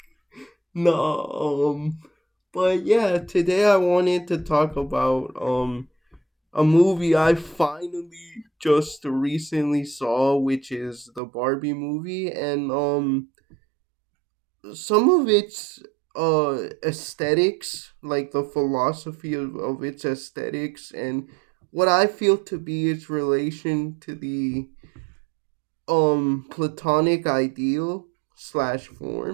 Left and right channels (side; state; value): left; drops out; at 11.2 s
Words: no but yeah, today I wanted to talk about a movie I finally just recently saw, which is the Barbie movie, and some of its aesthetics, like the philosophy of its aesthetics and what I feel to be its relation to the Platonic ideal slash